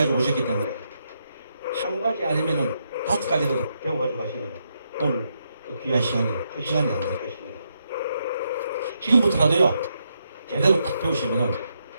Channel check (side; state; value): both; inverted; correlation -0.80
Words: 오셨기 때문에 한 가지 아니면은 5가지도 배워가지고 가시면 오늘 그 귀한 시간이 그 시간이 안 될 것입니다. 지금부터라도요 제대로 딱 배우시면은